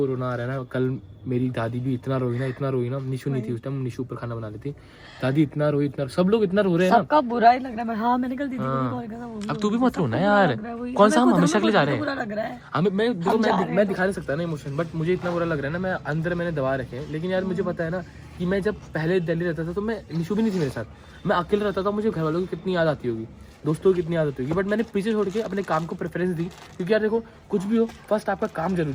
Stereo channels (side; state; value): both; identical; correlation 1.00